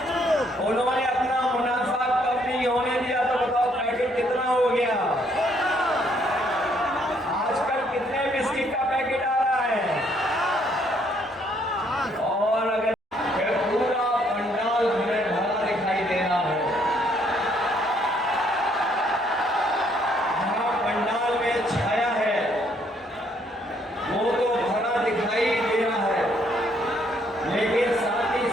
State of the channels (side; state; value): both; normal; correlation 0.68